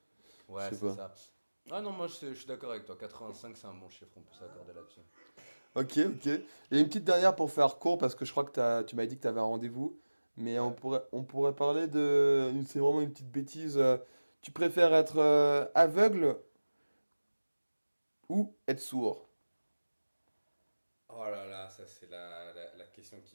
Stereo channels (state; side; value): inverted; both; correlation -1.00